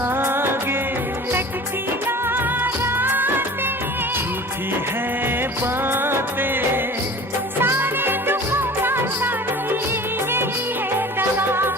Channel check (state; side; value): normal; both; correlation 0.41